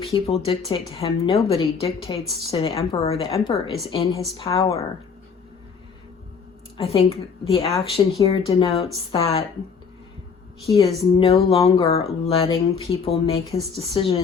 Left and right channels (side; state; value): right; quieter; 5.9 dB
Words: dictate to him. Nobody dictates to the Emperor. The Emperor is in his power. I think the action here denotes that he is no longer letting people make his